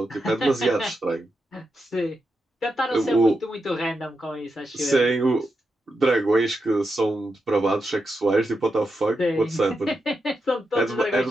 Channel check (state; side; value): normal; both; correlation 0.86